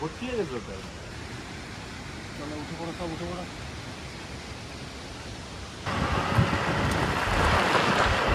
ভর্তি হয়ে গেছে। উঠে পড়ো, সব উঠে পড়ো।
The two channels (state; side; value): identical; both; correlation 1.00